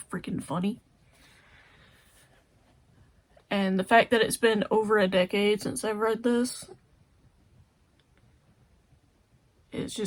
freaking funny. And the fact that it's been over a decade since I've read this, it's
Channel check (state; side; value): identical; both; correlation 1.00